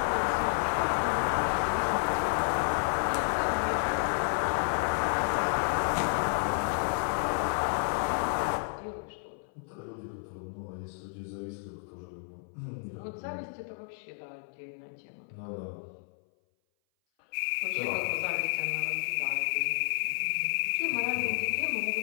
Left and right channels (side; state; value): right; silent; 57 dB below the other